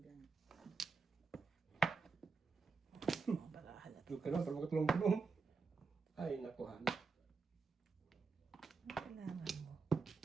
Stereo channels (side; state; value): left; quieter; 4.6 dB